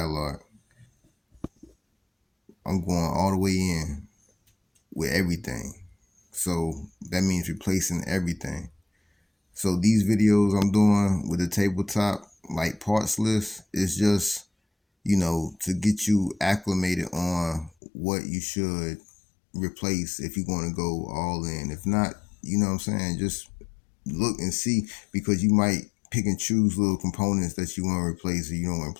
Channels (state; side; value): drops out; right; at 17.7 s